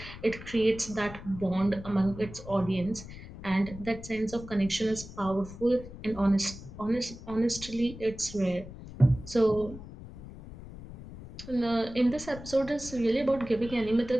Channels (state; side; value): noise; left; rumble, 14 dB below the sound